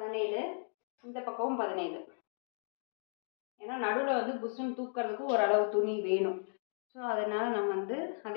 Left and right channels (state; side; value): silent; right; 54 dB below the other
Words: இந்த பக்கமும் 17. ஏன்னா நடுவில் வந்து புஷ்ஷுன்னு தூக்கிறதுக்கு ஓரளவு துணி வேணும். ஸோ அதனால் நம்ம வந்து